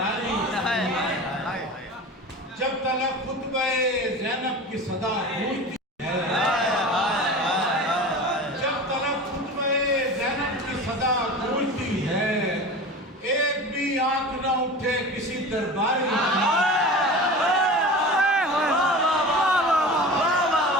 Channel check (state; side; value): normal; both; correlation 0.33